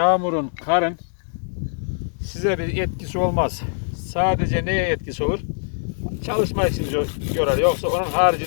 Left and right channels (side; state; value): right; silent; 64 dB below the other